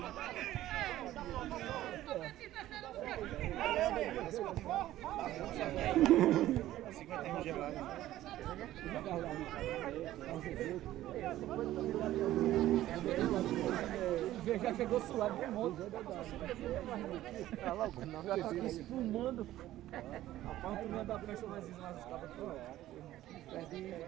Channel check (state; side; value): quieter; left; 14.3 dB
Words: Já chegou suado de monte. Tá logo, não, já tá aqui espumando. A parte da prancha mais escada toda.